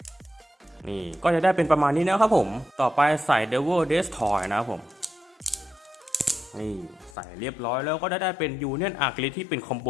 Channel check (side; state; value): right; drops out; at 7.2 s